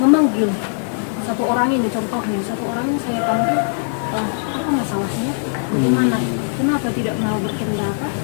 satu orang ini, contohnya satu orang ini saya panggil, apa masalahnya, bagaimana, kenapa tidak mau berpendapat,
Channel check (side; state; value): right; silent; 65 dB below the other